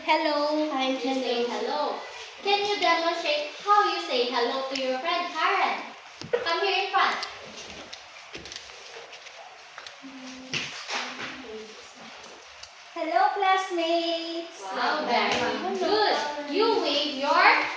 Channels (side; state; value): both; identical; correlation 1.00